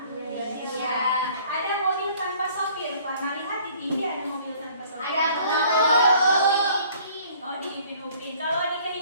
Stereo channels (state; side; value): inverted; both; correlation -0.55